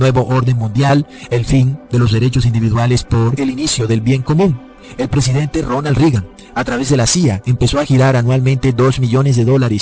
orden mundial, el fin de los derechos individuales por el inicio del bien común. El presidente Ronald Reagan, a través de la CIA, empezó a girar anualmente $2 millones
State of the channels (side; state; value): both; identical; correlation 1.00